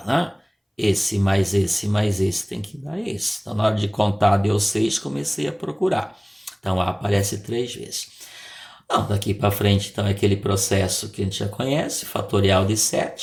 né? Esse mais esse tem que dar esse. Então, na hora de contar, deu 6, comecei a procurar. Então, A aparece 3 vezes. Não, daqui para frente, então, é aquele processo que a gente já conhece, fatorial de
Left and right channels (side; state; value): both; identical; correlation 1.00